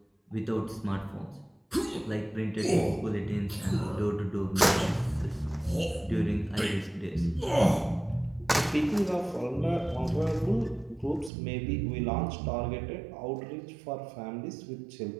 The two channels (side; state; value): left; drops out; at 11.3 s